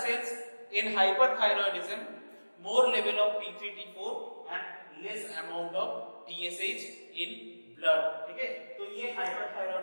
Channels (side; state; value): both; inverted; correlation -1.00